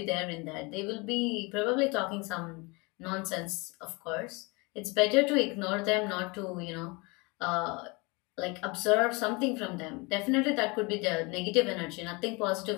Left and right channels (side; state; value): right; quieter; 27.5 dB